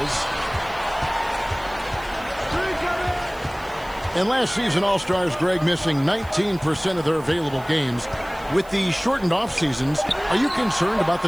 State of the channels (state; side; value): noise; right; hiss, 23 dB below the sound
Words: And last season, All-Stars Greg missing 19% of their available games. With the shortened off seasons, are you concerned about the